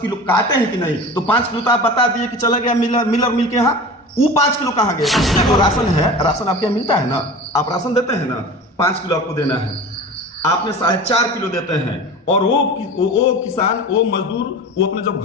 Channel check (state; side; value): normal; both; correlation 0.35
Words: किलो काटे हैं कि नहीं, तो 5 किलो तो आप बता दिए कि चला गया मिलर मिल के यहाँ, वो 5 किलो कहाँ गया? जो राशन है, राशन आपके यहाँ मिलता है ना, आप राशन देते हैं ना, 5 किलो आपको देना है, आपने 4.5 किलो देते हैं, और वो किसान, वो मजदूर, वो अपने जब